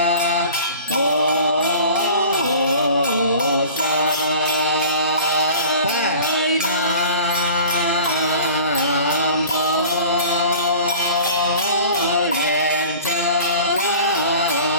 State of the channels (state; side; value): inverted; both; correlation -0.42